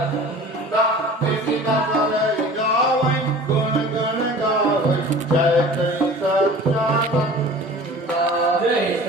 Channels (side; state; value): both; normal; correlation 0.42